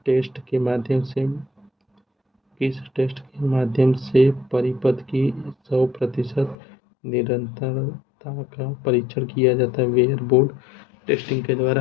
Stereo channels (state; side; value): drops out; right; at 6.6 s